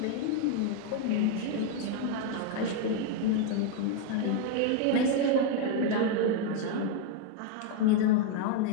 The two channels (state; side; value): different; both; correlation 0.01